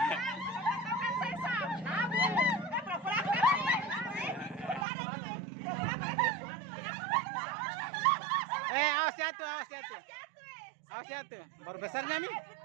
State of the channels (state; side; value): drops out; left; at 4.9 s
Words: Awas jatuh, awas jatuh. Awas jatuh. Baru besarnya nih.